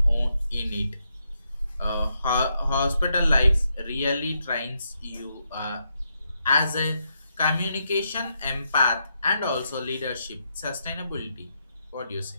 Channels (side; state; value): both; inverted; correlation -0.80